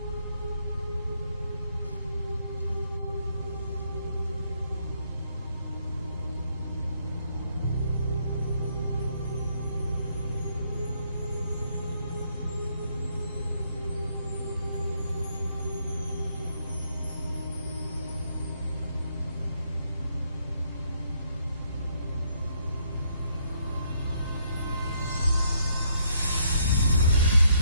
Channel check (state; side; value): inverted; both; correlation -0.71